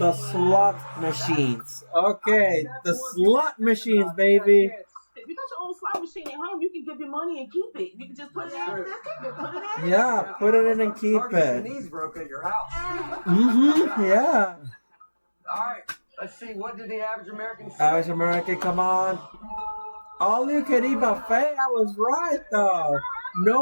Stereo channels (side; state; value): both; inverted; correlation -1.00